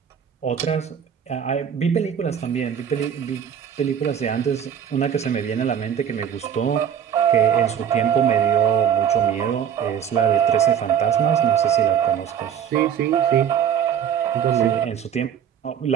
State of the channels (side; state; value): left; quieter; 8.7 dB